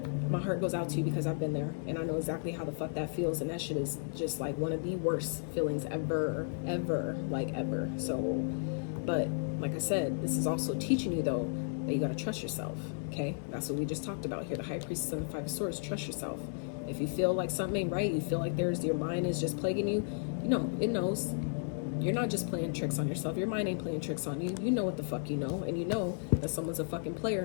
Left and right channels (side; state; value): right; silent; digital silence